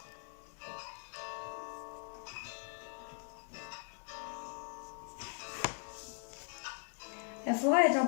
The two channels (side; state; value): right; silent; 51 dB below the other